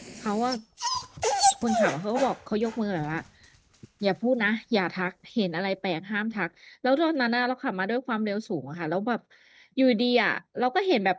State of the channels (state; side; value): identical; both; correlation 1.00